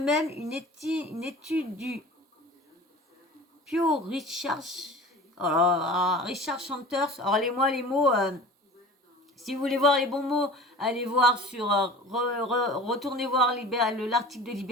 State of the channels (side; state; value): both; normal; correlation 0.39